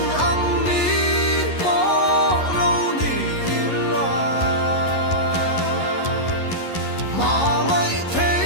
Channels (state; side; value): late; right; 11 ms